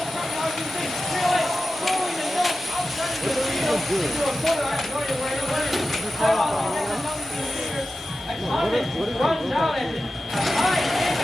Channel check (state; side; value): normal; both; correlation 0.93